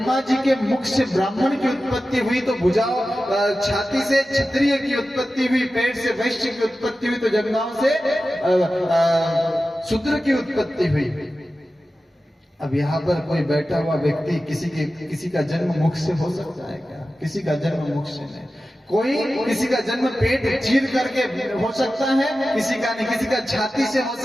जी के मुख से ब्राह्मण की उत्पत्ति हुई, तो भुजाओं छाती से क्षत्रिय की उत्पत्ति हुई, पेट से वैश्य की उत्पत्ति हुई, तो जंघाओं से शूद्र की उत्पत्ति हुई। अब यहाँ पर कोई बैठा हुआ व्यक्ति किसी का जन्म मुख से हो सकता है क्या, किसी का जन्म मुख से नहीं। कोई किसी का जन्म पेट चीर करके हो सकता है, किसी का नहीं, किसी का छाती से हो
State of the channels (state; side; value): normal; both; correlation 0.94